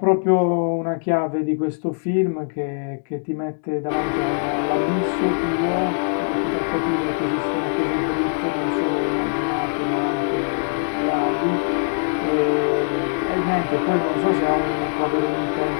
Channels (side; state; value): right; silent; digital silence